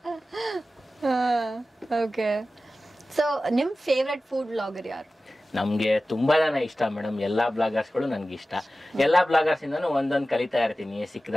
ಓಕೆ, ಸೊ ನಿಮ್ ಫೇವ್ರೆಟ್ ಫುಡ್ ವ್ಲಾಗರ್ ಯಾರು? ನಮ್ಗೆ ತುಂಬಾ ಜನ ಇಷ್ಟ ಮೇಡಮ್, ಎಲ್ಲಾ ಬ್ಲಾಗರ್ಸ್ಗಳು ನನ್ಗೆ ಇಷ್ಟ. ಎಲ್ಲಾ ಬ್ಲಾಗರ್ಸ್ ಇಂದನೂ ಒಂದೊಂದು ಕಲಿತಾ ಇರ್ತೀನಿ.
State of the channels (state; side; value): normal; both; correlation 0.95